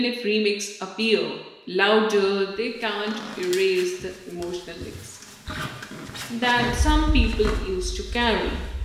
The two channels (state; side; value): identical; both; correlation 1.00